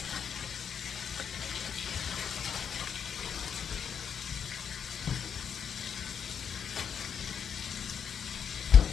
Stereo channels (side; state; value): right; quieter; 7.5 dB